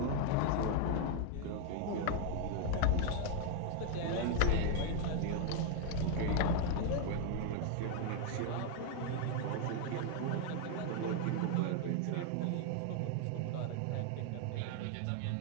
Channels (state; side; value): different; both; correlation 0.01